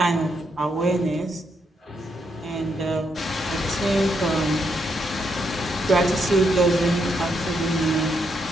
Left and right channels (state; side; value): normal; both; correlation 0.78